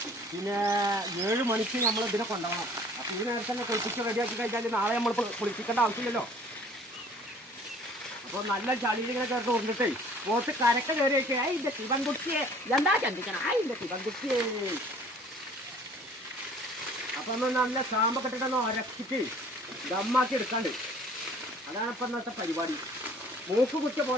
പിന്നെ 7 മണിക്ക് നമ്മൾ ഇതിനെ കൊണ്ടുപോകണം. അപ്പം ഇത് നേരത്തെ തന്നെ കുളിപ്പിച്ച് റെഡിയാക്കി കഴിഞ്ഞാൽ നാളെ നമ്മൾ കുളിപ്പിക്കേണ്ട ആവശ്യമില്ലല്ലോ. അപ്പോൾ നല്ല ചളിയിൽ ഇങ്ങനെ ചേർത്ത് കൊണ്ടിട്ടേ പോത്ത് കരക്ക് കയറി വെച്ചേ അതിൻ്റെ ശിവൻകുട്ടിയെ എന്താ ചിന്തിക്കണം അതിൻ്റെ ശിവൻകുട്ടിയെ. അപ്പം ഒന്ന് നല്ല ഷാമ്പൊക്കെ ഇട്ടിട്ടൊന്ന് ഉരച്ചിട്ട് ദമ്മാക്കി എടുക്കാണ്ട്. അതാണ് ഇപ്പം ഇന്നത്തെ പരിപാടി. മൂക്ക് കുത്തിയ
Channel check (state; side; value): normal; both; correlation 0.52